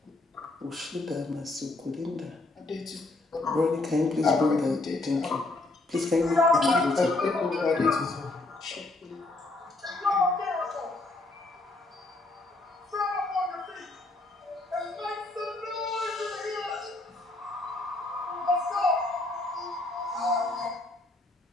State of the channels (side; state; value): right; quieter; 3.0 dB